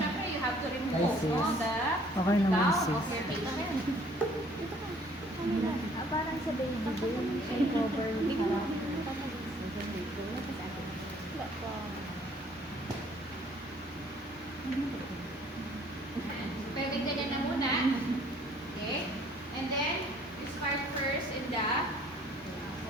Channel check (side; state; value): both; normal; correlation 0.58